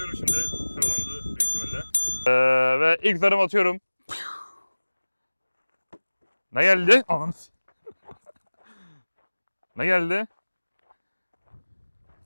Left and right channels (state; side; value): inverted; both; correlation -1.00